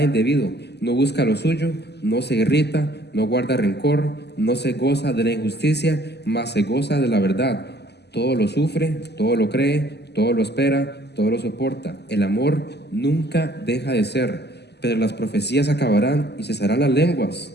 indebido, no busca lo suyo, no se irrita, no guarda rencor, no se goza de la injusticia, mas se goza de la verdad. Todo lo sufre, todo lo cree, todo lo espera, todo lo soporta. El amor nunca deja de ser, pero las profecías acabarán y cesarán las lenguas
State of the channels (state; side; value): late; right; 0.49 ms